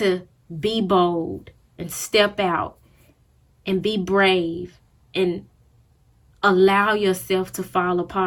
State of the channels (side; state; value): both; identical; correlation 1.00